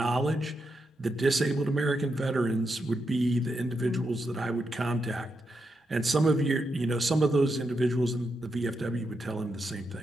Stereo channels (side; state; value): both; normal; correlation 0.84